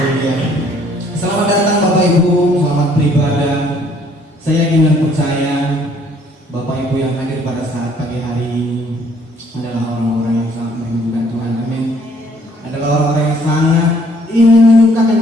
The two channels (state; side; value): normal; both; correlation 0.62